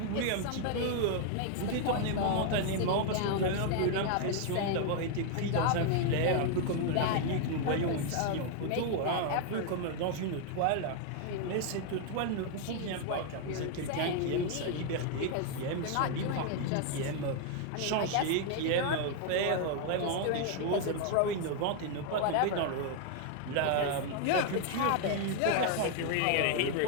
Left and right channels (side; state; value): both; different; correlation 0.00